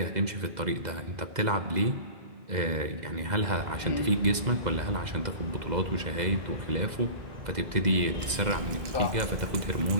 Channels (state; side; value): late; left; 2.0 ms